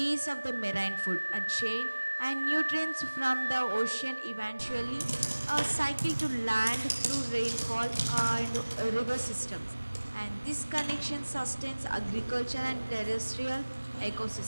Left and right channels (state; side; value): inverted; both; correlation -1.00